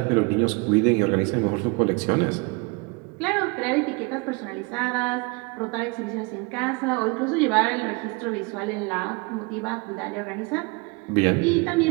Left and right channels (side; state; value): left; quieter; 28.0 dB